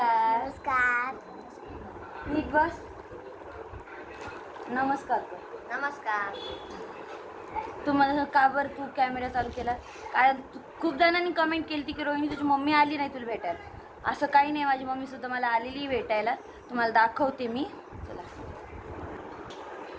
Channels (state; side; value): identical; both; correlation 1.00